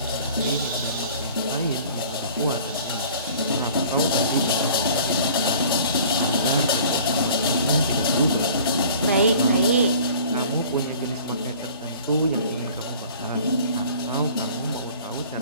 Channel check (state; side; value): inverted; both; correlation -0.48